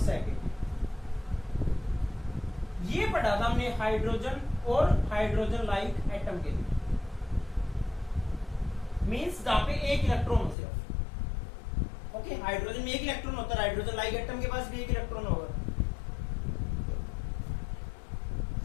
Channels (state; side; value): drops out; right; at 10.6 s